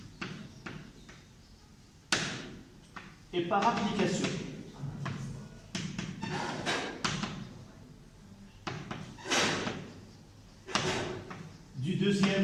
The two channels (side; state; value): both; identical; correlation 1.00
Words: et par application, du